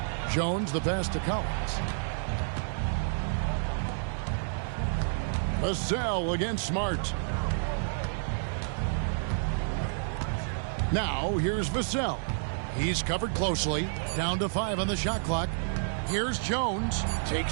Jones, the pass to Collins. Vassell against Smart. Now, here's Vassell. He's covered closely. Down to 5 on the shot clock. Here's Jones.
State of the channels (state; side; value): silent; left; digital silence